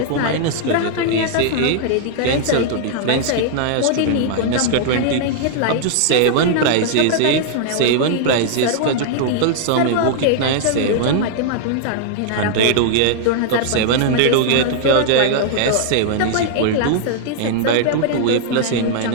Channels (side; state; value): both; different; correlation -0.01